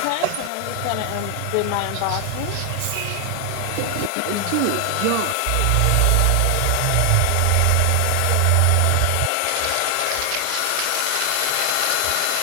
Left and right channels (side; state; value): both; different; correlation 0.00